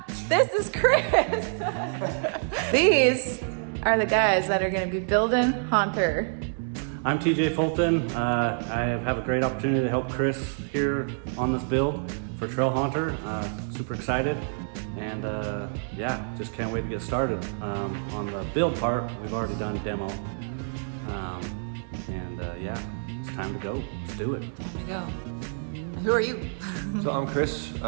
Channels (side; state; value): left; silent; digital silence